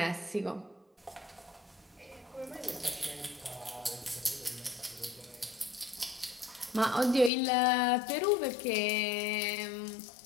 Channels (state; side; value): drops out; right; at 7.3 s